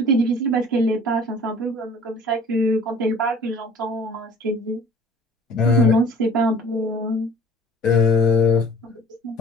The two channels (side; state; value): both; normal; correlation 0.48